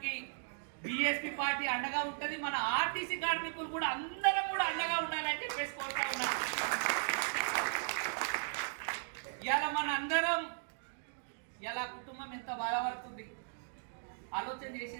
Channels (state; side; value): silent; left; digital silence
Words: బీఎస్పీ పార్టీ అండగా ఉంటది. మన ఆర్టీసీ కార్మికులు కూడా అందరం కూడా అండగా ఉండాలని చెప్పేసి కోరుతా ఉన్నాం. ఇలా మన అందరం ఇలా కుటుంబం ఎంత బాధపడుతుంది ఆలోచన